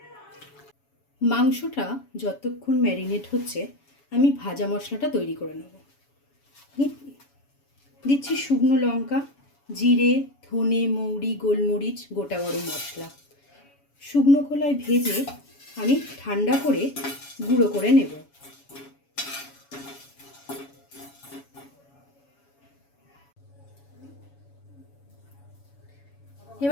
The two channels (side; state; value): right; late; 7.1 ms